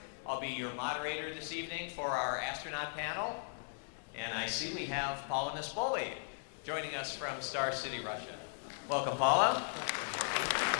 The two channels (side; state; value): right; silent; digital silence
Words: I'll be your moderator this evening for our astronaut panel. And I see we have Paulo Nespoli joining us from Star City, Russia. Welcome, Paulo.